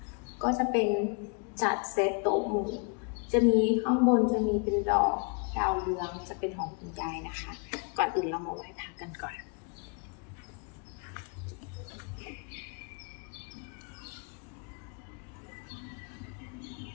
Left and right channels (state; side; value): quieter; right; 37.9 dB